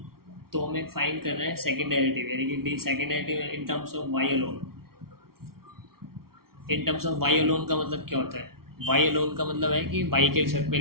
तो हमें फाइंड करना है सेकेंड डेरिवेटिव, यानी कि second derivative in terms of y alone. In terms of y alone का मतलब क्या होता है, y अलोन का मतलब है कि y के रिजल्ट पे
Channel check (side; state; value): left; late; 0.94 ms